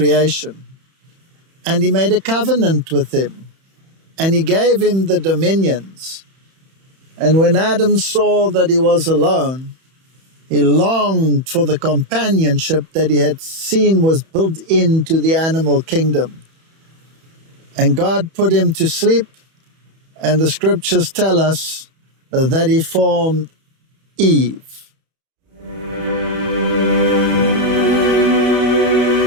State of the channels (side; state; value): left; late; 31 ms